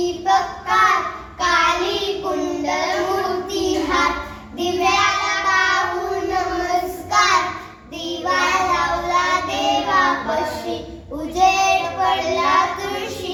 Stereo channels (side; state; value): both; identical; correlation 1.00